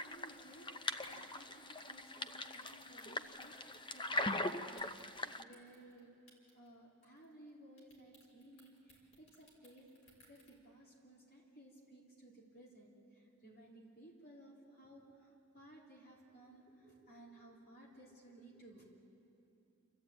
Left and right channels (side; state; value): both; normal; correlation -0.10